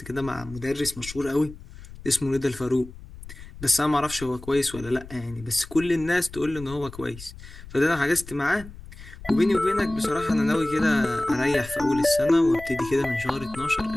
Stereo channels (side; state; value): left; noise; rumble, 16 dB below the sound